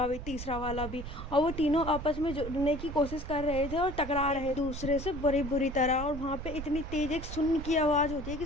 भी, तीसरा वाला भी। और वो तीनों आपस में जुड़ने की कोशिश कर रहे थे और टकरा रहे दूसरे से बड़ी बुरी तरह। और वहाँ पे इतनी तेज एक सुन की आवाज़ होती है कि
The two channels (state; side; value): noise; right; rumble, 8 dB below the sound